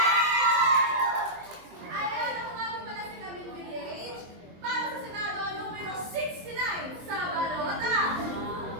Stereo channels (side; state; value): left; late; 23 ms